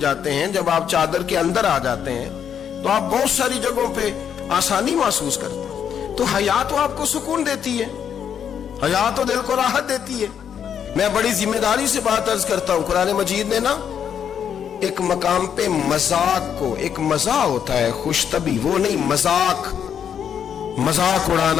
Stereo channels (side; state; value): right; quieter; 8.3 dB